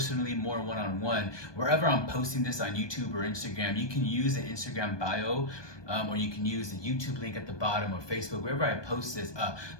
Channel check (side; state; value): right; late; 1.2 ms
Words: more one-on-one, wherever I'm posting this on YouTube or Instagram, you can use the Instagram bio, or you can use the YouTube link at the bottom, or Facebook, wherever I post this.